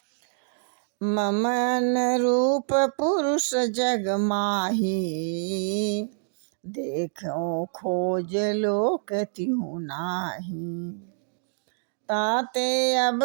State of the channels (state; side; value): silent; left; digital silence